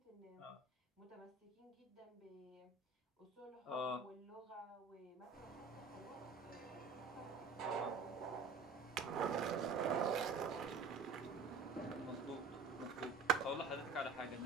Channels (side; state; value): left; quieter; 4.5 dB